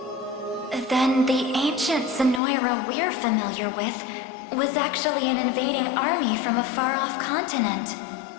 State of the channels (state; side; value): drops out; right; at 2.4 s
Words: Then the ancient Zenoira we're familiar with was actually an invading army from a far-off continent.